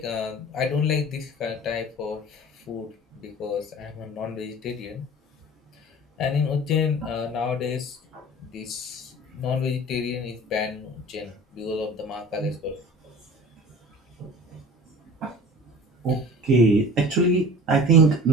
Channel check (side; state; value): both; normal; correlation 0.41